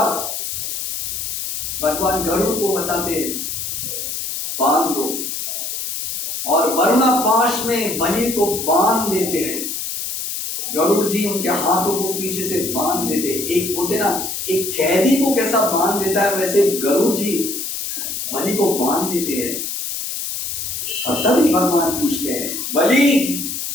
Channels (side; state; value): left; noise; hiss, 4 dB below the sound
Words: भगवान गरुड़ को बताते बांध दो, और वरुणा पाश में बलि को बांध देते हैं। गरुड़ जी उनके हाथों को पीछे से बांध देते, एक बोलते ना एक कैदी को कैसा बांध देता है वैसे गरुड़ जी बलि को बांध देते हैं। और तभी भगवान पूछते हैं, बलि